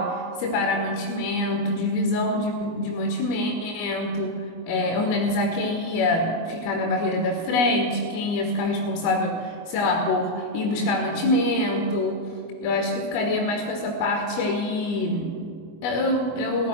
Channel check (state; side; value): late; right; 24 ms